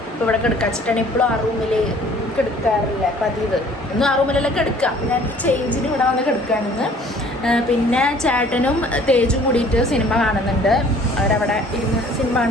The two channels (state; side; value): normal; both; correlation 0.54